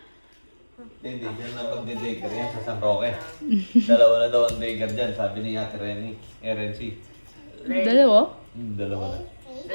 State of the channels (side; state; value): both; inverted; correlation -1.00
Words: Hindi, dyan lang magde-daycare yan sa San Roque. Dalawa na daw ang daycare dyan, sabi ni Ate Renny. RNC. Dalawa? Dalawa na.